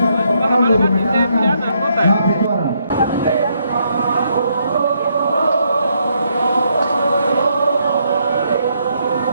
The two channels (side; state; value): both; inverted; correlation -0.75